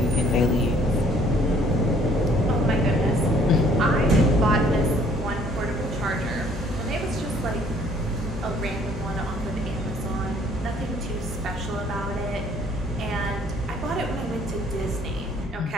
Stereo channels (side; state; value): both; normal; correlation 0.60